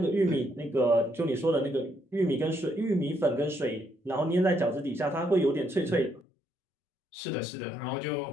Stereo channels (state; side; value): drops out; right; at 6.2 s